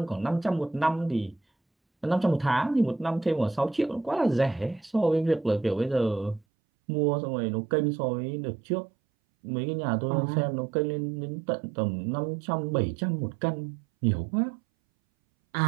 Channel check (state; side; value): drops out; left; at 6.5 s